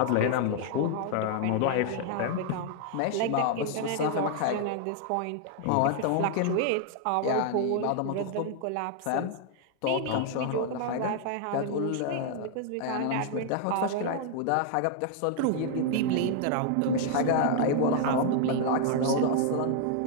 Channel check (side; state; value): both; different; correlation 0.00